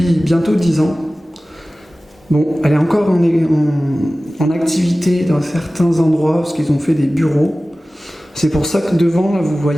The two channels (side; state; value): both; normal; correlation 0.97